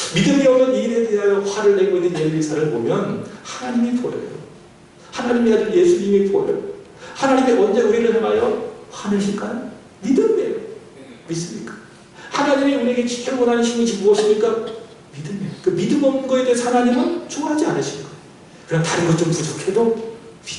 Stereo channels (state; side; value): identical; both; correlation 1.00